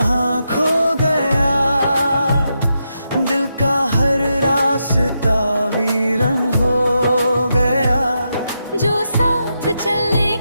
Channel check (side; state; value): both; inverted; correlation -0.85